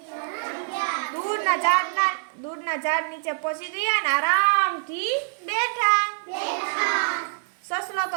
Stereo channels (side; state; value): left; silent; digital silence